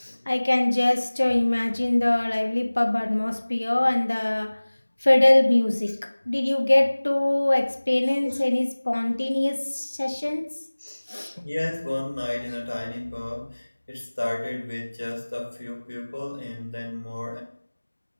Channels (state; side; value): inverted; both; correlation -1.00